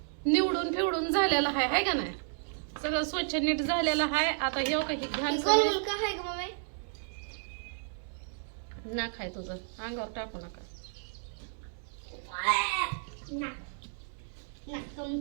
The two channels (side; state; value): left; silent; digital silence